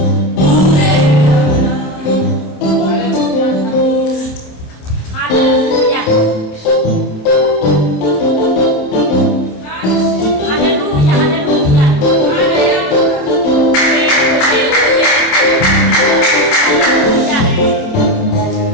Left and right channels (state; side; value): late; right; 27 ms